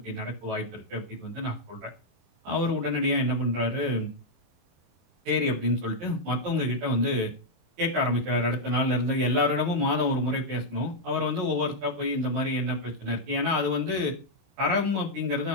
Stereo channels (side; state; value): left; late; 23 ms